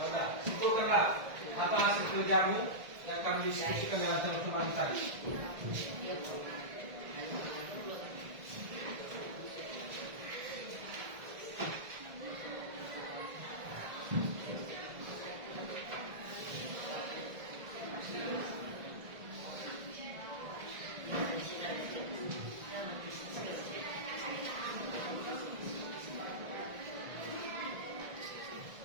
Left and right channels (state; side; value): late; left; 1.7 ms